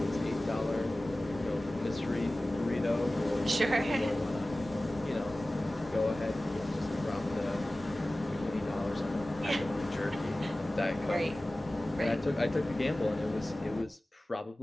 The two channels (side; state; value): both; normal; correlation 0.97